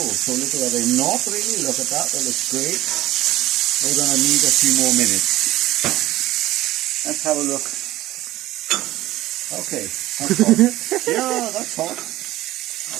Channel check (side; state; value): left; quieter; 16.1 dB